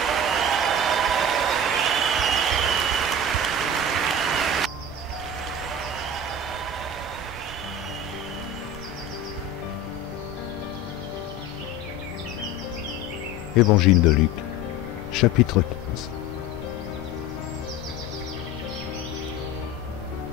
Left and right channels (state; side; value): normal; both; correlation 0.33